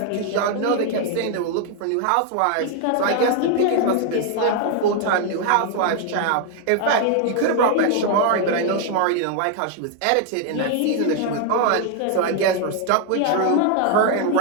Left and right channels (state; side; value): different; both; correlation 0.00